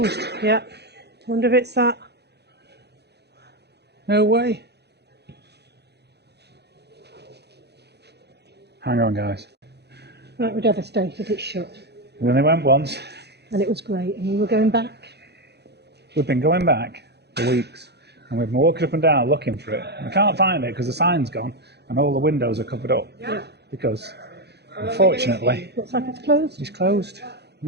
Yeah. Wonder if it's that. No way. Hang on, guys. We're devastated it's shut. We only went once. And it was great. And we were going back. We've been going back for weeks. And we've been walking up and down looking for it. We can't find it because the sign's gone and all the windows are covered up. Yeah. Because, unfortunately, looks like it's closed. It's closed.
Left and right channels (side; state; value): left; late; 0.48 ms